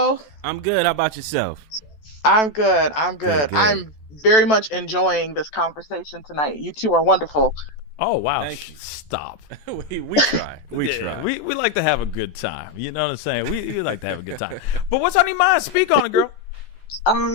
I'm good. How about yourself? I'm good. Good. I'm very much enjoying this conversation tonight. You two are wonderful. Oh, wow. Thank you. Stop. we try. We Yeah, try. We like to have a good time. You know what I'm saying? We like to have a good time. But what's on your mind? Speak on it, girl.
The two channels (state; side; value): late; right; 14 ms